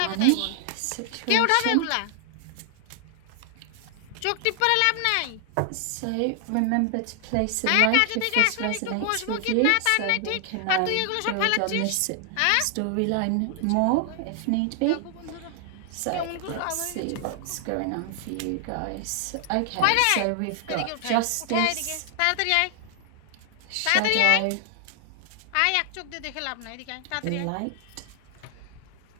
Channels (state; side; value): different; both; correlation 0.00